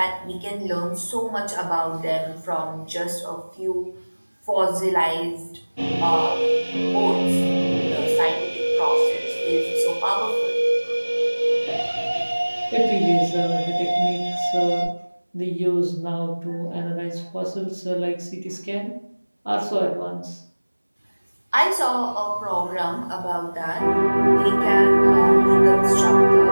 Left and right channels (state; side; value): inverted; both; correlation -1.00